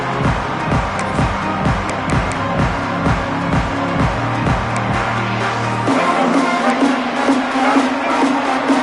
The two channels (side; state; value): both; identical; correlation 1.00